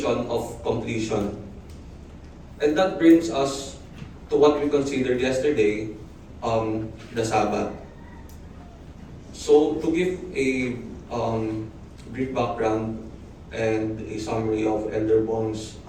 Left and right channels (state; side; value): identical; both; correlation 1.00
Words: of completion. And that brings us to what we considered yesterday, the Sabbath. So, to give a brief background and a summary of Elder Bong's